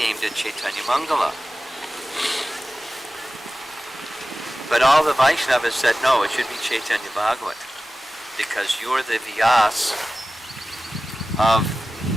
it Chaitanya Mangala. But all the Vaishnavas said, no, it should be Chaitanya Bhagavat, because you're the Vyas of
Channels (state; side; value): normal; both; correlation 0.96